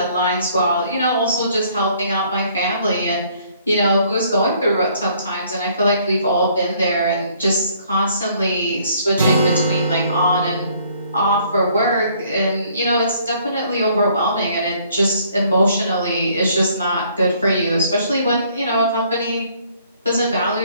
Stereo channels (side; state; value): both; inverted; correlation -0.62